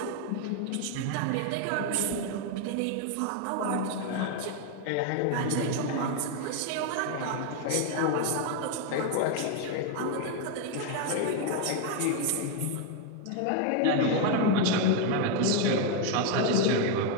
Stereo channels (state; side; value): different; both; correlation 0.01